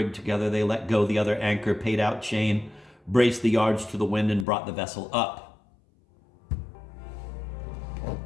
together, they let go the other anchor, paid out chain, braced the yards to the wind, and brought the vessel up.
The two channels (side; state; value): right; drops out; at 4.5 s